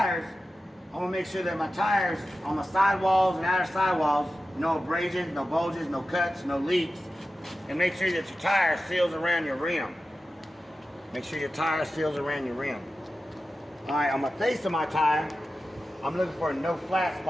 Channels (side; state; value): both; normal; correlation 0.93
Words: I want to make sure that my tires on the sidewalls and outer sidewalls, no abrasions, no bulges, no cuts, no leaks, and make sure that your tire seals around your rim. Make sure your tire seals around your rim. Alright, on the face of my tire, I'm looking for no flat